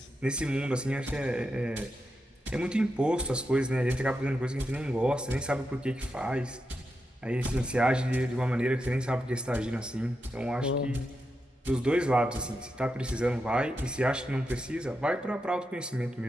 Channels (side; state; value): both; normal; correlation 0.87